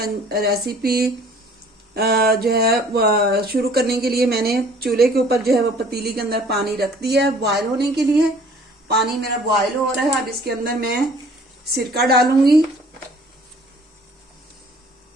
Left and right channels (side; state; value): both; normal; correlation 0.54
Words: रेसिपी जो है शुरू करने के लिए मैंने चूल्हे के ऊपर जो है वो पतीली के अंदर पानी रख दिया है बॉयल होने के लिए। पानी मेरा बॉयल हो रहा है। अब इसके अंदर मैं सिरका डालूंगी,